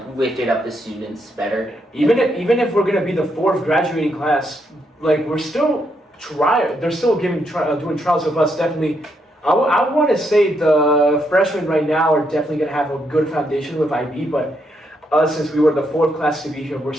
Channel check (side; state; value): both; normal; correlation 0.78